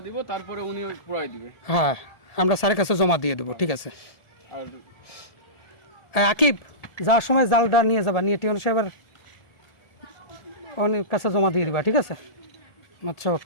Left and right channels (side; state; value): right; late; 1.7 ms